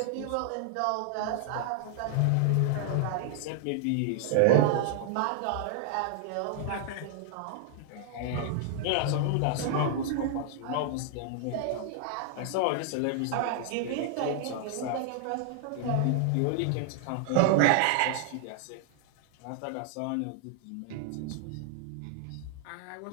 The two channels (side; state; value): both; different; correlation 0.00